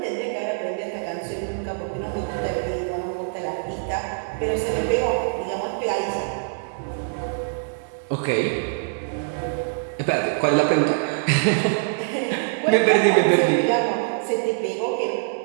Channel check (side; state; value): left; silent; digital silence